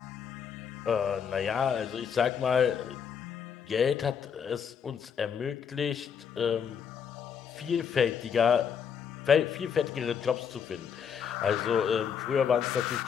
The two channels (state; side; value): quieter; right; 7.4 dB